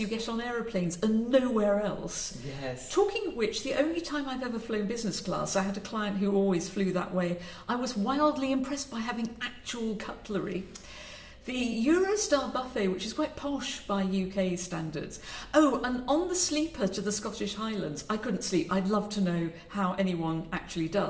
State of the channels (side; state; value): both; identical; correlation 1.00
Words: get on aeroplanes are nowhere else. Yes. Talking of which, the only time I've ever flown business class, I had a client who always flew that way. I was wildly impressed by having actual cutlery. The Eurostar buffet, which is quite posh by UK standards. Oh, and on the sleeper to the Scottish Highlands, I couldn't sleep. I'd love to know how anyone actually